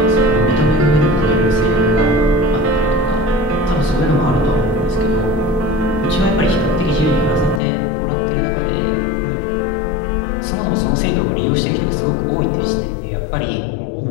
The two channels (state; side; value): drops out; right; at 7.6 s